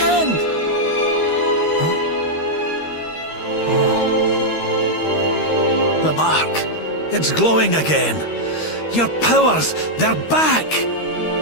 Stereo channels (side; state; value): right; late; 13 ms